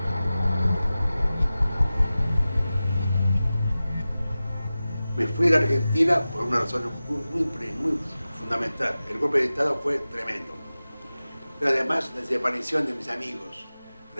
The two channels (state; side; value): inverted; both; correlation -0.95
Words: Me fui a la Argentina por una razón muy fundamental. El golpe de Estado fue tremendo. Pero además la desaparición de mis amigos.